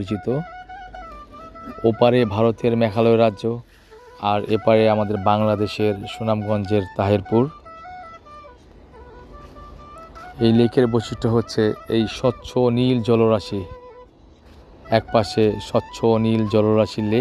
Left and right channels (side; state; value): both; identical; correlation 1.00